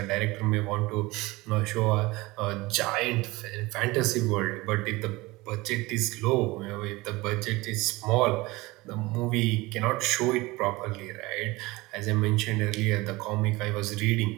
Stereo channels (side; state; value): left; quieter; 21.5 dB